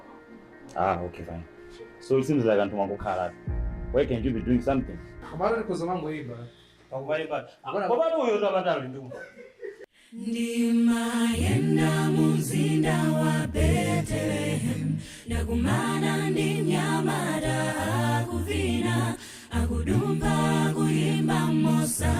Okay, fine. So it seems like I'm going to call. Why can't you be doing something? Ndimayenda muzinda wa Bethlehem, nakumana ndi mnyamata akuvina, akudumba kuyimba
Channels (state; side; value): identical; both; correlation 1.00